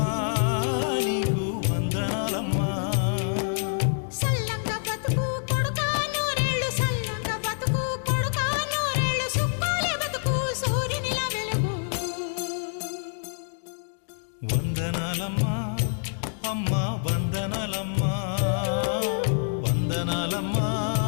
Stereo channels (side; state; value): right; silent; digital silence